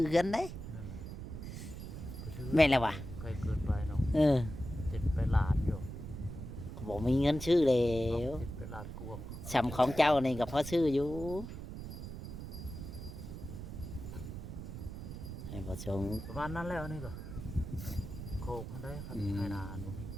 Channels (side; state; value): right; noise; rumble, 9 dB below the sound